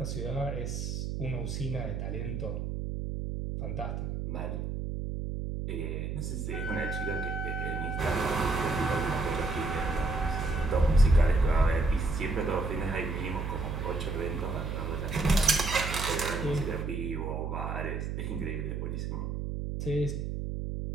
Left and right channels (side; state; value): right; noise; hum, 3 dB below the sound